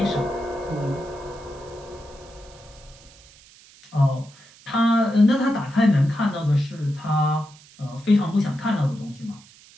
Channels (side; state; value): right; noise; hiss, 24 dB below the sound